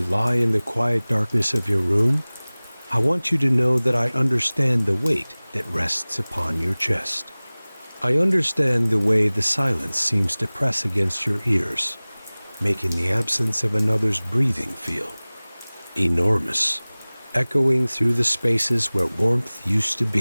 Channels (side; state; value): both; inverted; correlation -1.00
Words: lie in the quiet darkness of your room, I want you to know that I understand the weight that rests upon your chest. I understand the way the silence seems to press against your ears, making the absence of another's breathing feel enormous, echoing through the spaces where warmth used to